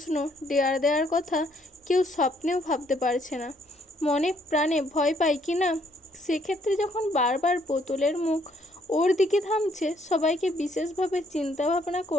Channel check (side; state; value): both; normal; correlation 0.68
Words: দেয়ার দেওয়ার কথা কেউ স্বপ্নেও ভাবতে পারছে না। মনে প্রাণে ভয় পায় কি না, সেক্ষেত্রে যখন বারবার বোতলের মুখ ওর দিকে থামছে, সবাইকে বিশেষভাবে চিন্তাভাবনা